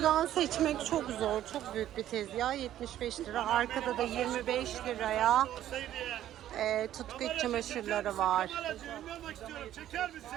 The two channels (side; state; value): left; quieter; 12.2 dB